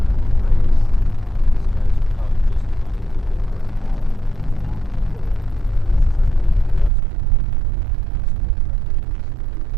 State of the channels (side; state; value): left; drops out; at 6.9 s